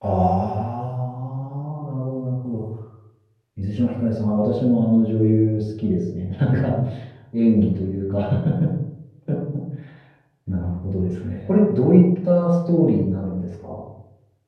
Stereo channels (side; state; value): both; identical; correlation 1.00